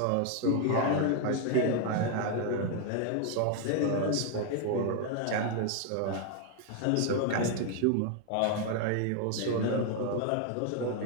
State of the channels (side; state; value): both; different; correlation 0.00